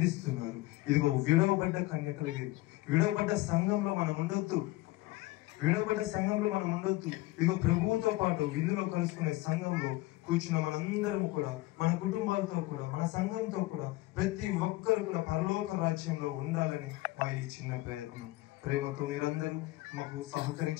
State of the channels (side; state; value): right; quieter; 19.0 dB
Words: ఇదిగో విడవబడ్డ కన్యకలు, విడవబడ్డ సంఘంలో మనం ఉండొద్దు. ఇదిగో ప్రభువుతో పాటు విందులో కలుసుకునే సంఘంలో కూర్చున్న మనందరం కూడా, మన కుటుంబాలతో కూడా, మన సంఘంతో కూడా, ప్రతి ఒక్కరు కూడా పరలోక రాజ్యంలో ఉండాలని మా ఈ చిన్న ప్రయత్నం. ప్రేమతో మీరందరూ మాకు